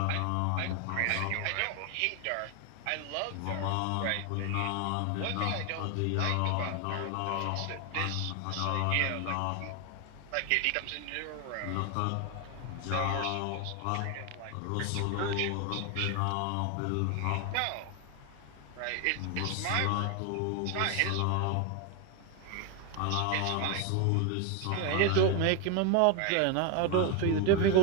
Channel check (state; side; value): different; both; correlation 0.01